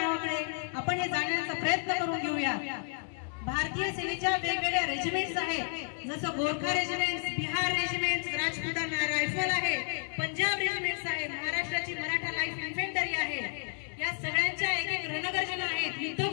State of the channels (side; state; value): right; silent; 57 dB below the other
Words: आपण हे जाणण्याचा प्रयत्न करून घेऊया। भारतीय सेनेच्या वेगवेगळ्या रेजिमेंट्स आहेत, जसं Gorkha regiment, Bihar regiment, Rajputana rifle आहे, पंजाब रेजिमेंट्स आहे, महाराष्ट्राची मराठा लाईफ इन्फेंटरी आहे। या सगळ्यांच्या एक एक रणगर्जना आहेत,